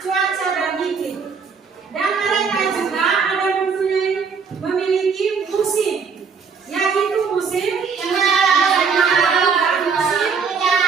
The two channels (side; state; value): left; quieter; 5.6 dB